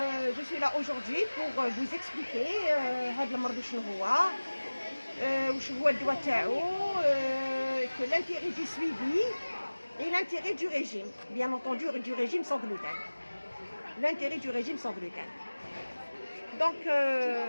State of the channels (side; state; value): both; inverted; correlation -1.00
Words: je suis là aujourd'hui pour vous expliquer هاد المرض شنو هو، وشنو هو الدواء تاعو، que l'intérêt du suivi et l'intérêt du régime, bien entendu du régime sans gluten. L'intérêt du régime sans gluten. Donc